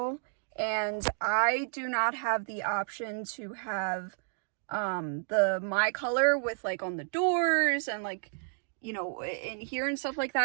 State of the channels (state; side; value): silent; left; digital silence